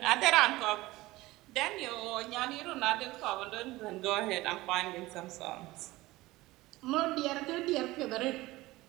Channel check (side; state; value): left; quieter; 19.0 dB